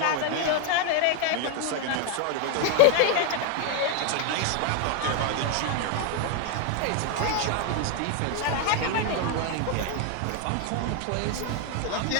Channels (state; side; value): different; both; correlation 0.01